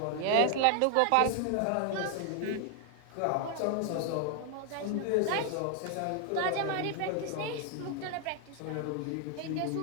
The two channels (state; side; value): different; both; correlation 0.00